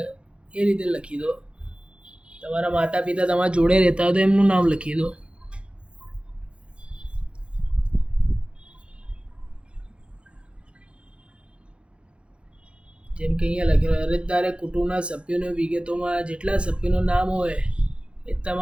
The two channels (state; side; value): late; left; 0.058 ms